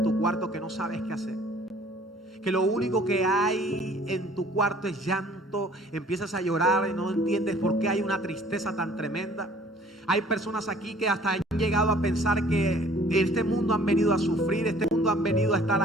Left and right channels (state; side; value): normal; both; correlation 0.54